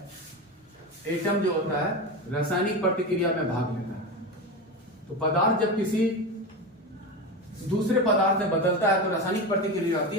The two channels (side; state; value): both; normal; correlation 0.21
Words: एटम जो होता है रासायनिक प्रतिक्रिया में भाग लेता है। तो पदार्थ जब किसी दूसरे पदार्थ में बदलता है तो रासायनिक प्रतिक्रिया होती